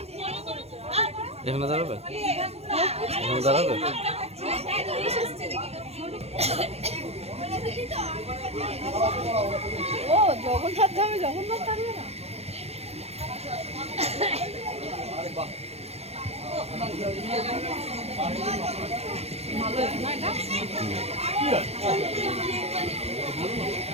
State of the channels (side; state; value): left; late; 0.30 ms